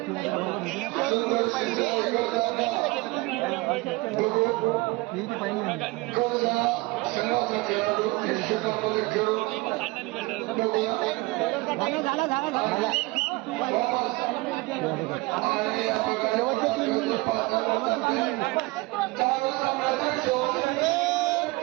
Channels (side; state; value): left; quieter; 23.1 dB